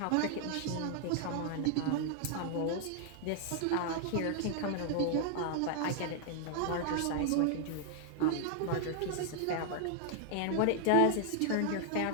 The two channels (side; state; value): both; different; correlation 0.00